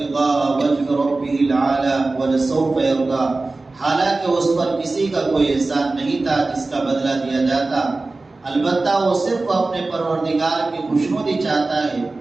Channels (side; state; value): left; quieter; 3.3 dB